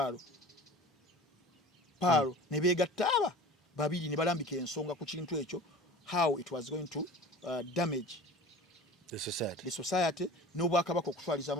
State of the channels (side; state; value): both; normal; correlation 0.40